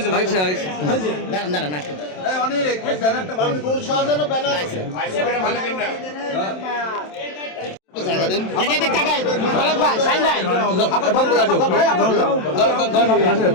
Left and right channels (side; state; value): right; late; 27 ms